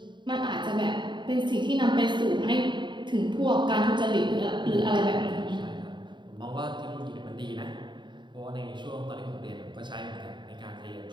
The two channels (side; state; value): left; late; 0.22 ms